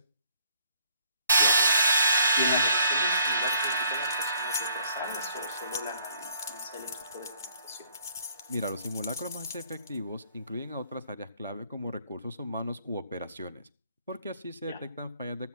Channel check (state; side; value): inverted; both; correlation -0.64